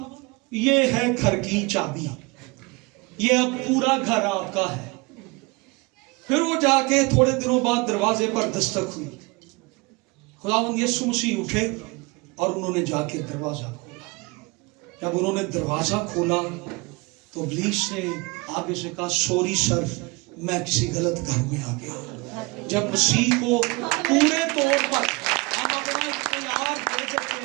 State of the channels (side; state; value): left; quieter; 26.6 dB